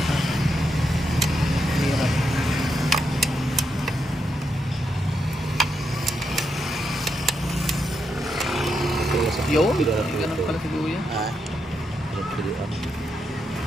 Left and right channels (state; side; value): normal; both; correlation 0.82